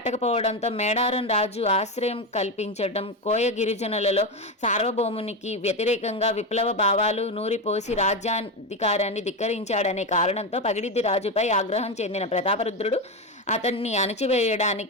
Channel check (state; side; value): normal; both; correlation 0.14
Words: మేడారం రాజు ఆశ్రయం కల్పించడం, కోయ గిరిజనులలో సార్వభౌమునికి వ్యతిరేకంగా విప్లవ భావాలు నూరిపోసి రాజ్యాధికారాన్ని ధిక్కరించాడనే కారణంతో పగిడిద్ది రాజుపై ఆగ్రహం చెందిన ప్రతాపరుద్రుడు అతన్ని